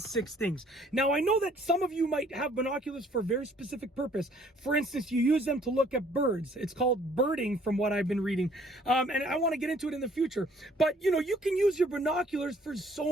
6 things. Now, I know that some of you might have binoculars for a very specific purpose. For instance, you use them to look at birds. It's called birding from what I've been reading. And I want to get into it in the future. But, you can use your binoculars for so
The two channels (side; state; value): both; normal; correlation 0.60